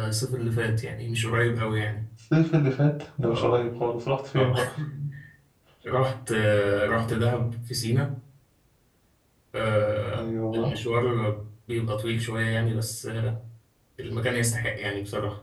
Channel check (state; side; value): identical; both; correlation 1.00